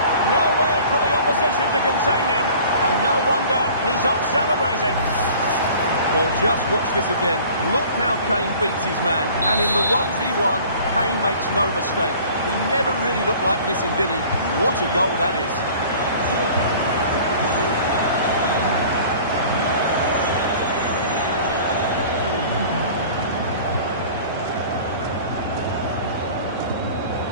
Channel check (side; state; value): both; inverted; correlation -0.46